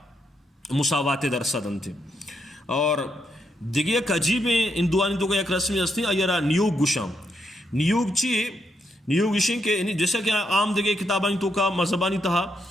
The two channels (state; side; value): normal; both; correlation 0.79